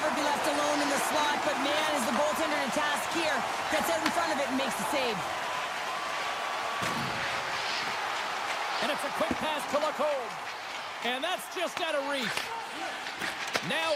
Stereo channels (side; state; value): both; identical; correlation 1.00